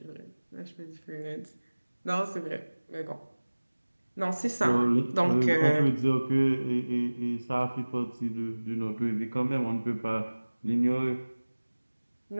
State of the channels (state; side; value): inverted; both; correlation -1.00